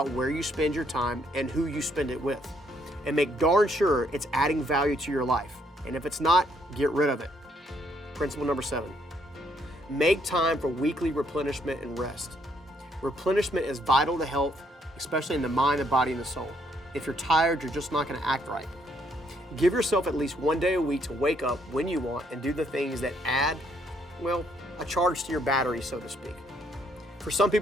where you spend your time and who you spend it with. And make darn sure it's adding value to your life. And if it's not, get rid of it. Principle number 7. Make time for weekly replenishment and rest. Replenishment is vital to health, especially in the mind, the body, and the soul. If you're tired, you're just not going to act right. Give yourself at least one day a week to wake up when you want and do the things that add, a charge to your battery, so to speak. For some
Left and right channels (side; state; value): both; normal; correlation 0.71